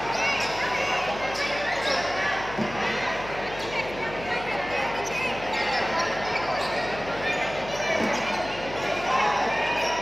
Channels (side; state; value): left; noise; hum, 13 dB below the sound